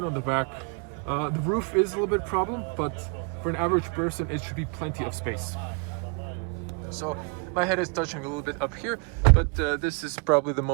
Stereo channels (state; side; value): quieter; left; 33.5 dB